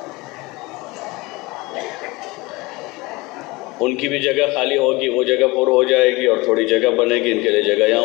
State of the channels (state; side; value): quieter; right; 23.1 dB